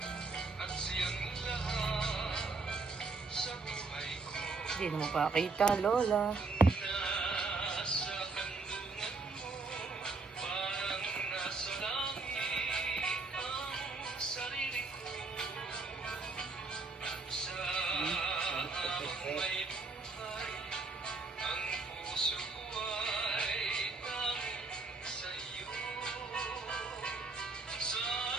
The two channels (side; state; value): left; quieter; 3.9 dB